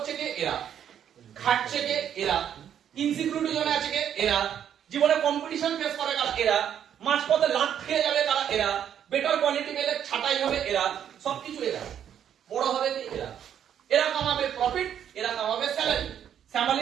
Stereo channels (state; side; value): quieter; left; 9.4 dB